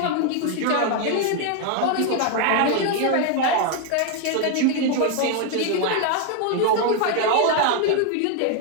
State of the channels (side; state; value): both; different; correlation 0.01